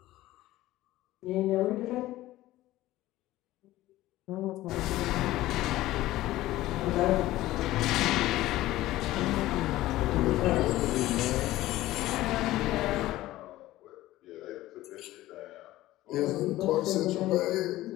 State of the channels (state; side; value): quieter; right; 16.2 dB